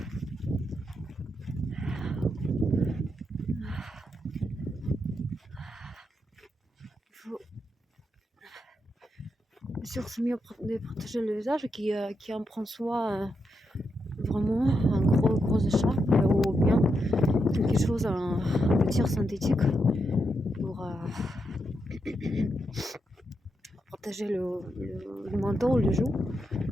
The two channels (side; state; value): both; normal; correlation 0.83